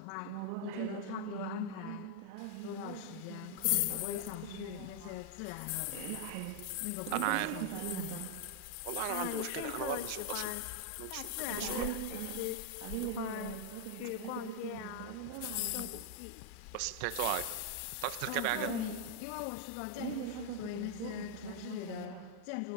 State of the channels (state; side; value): different; both; correlation 0.00